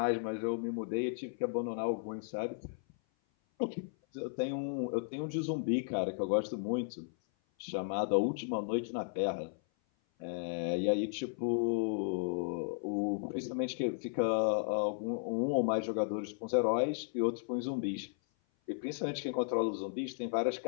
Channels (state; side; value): silent; right; 54 dB below the other